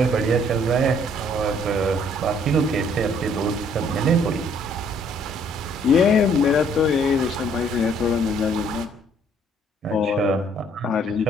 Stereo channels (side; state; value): both; normal; correlation 0.63